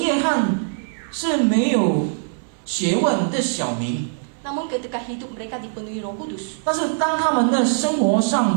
翰是没有学问的小民。 Namun ketika hidup mereka dipenuhi Roh Kudus, 但是当他们的生活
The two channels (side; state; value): left; silent; digital silence